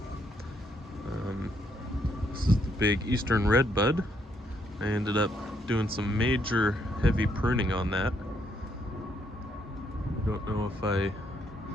This is the big eastern redbud. I ended up doing some major heavy pruning on that. I don't know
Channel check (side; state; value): both; normal; correlation 0.73